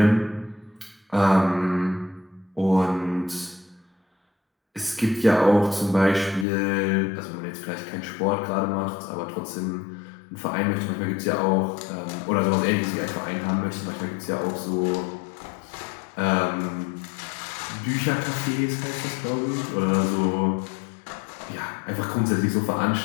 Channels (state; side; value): drops out; right; at 6.5 s